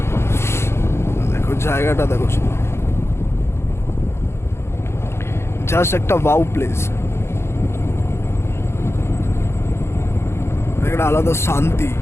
দেখো জায়গাটা, দেখো জাস্ট একটা ওয়াও প্লেস, একটা আলাদা শান্তি,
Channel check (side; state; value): right; late; 0.12 ms